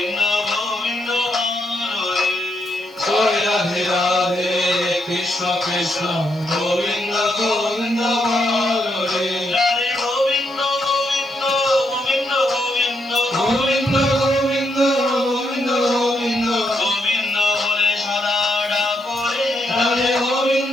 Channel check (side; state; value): right; noise; hiss, 28 dB below the sound